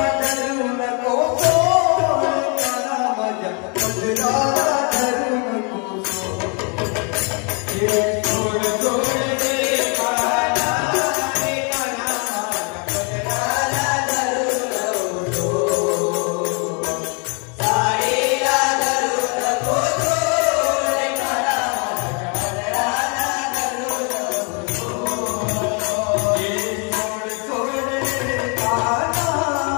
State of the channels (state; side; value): quieter; right; 35.5 dB